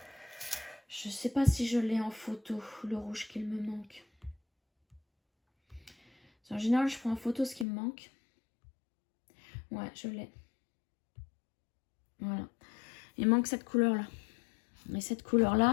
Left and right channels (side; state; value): right; drops out; at 7.7 s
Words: je sais pas si je l'ai en photo, le rouge qu'il me manque. En général, je prends en photo ce qui me manque. Ouais, je l'ai. Voilà. Il manque cette couleur-là. Et cette